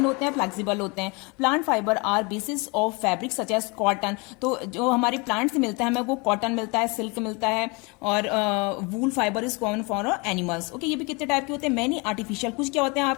होते हैं, फ्लेक्सिबल होते हैं। Plant fibre are basis of fabric such as cotton. तो जो हमारे प्लांट से मिलता है हमें, वो कॉटन मिलता है, सिल्क मिलता है। और वूल fibre is common for animals. Okay, ये भी कितने टाइप के होते हैं, मैनी आर्टिफिशियल। कुछ क्या होते हैं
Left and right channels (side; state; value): right; quieter; 28.9 dB